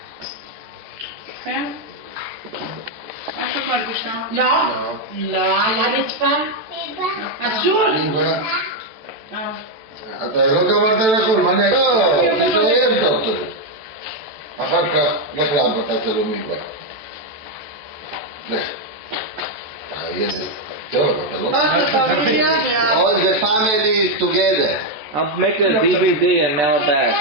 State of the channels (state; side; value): late; left; 14 ms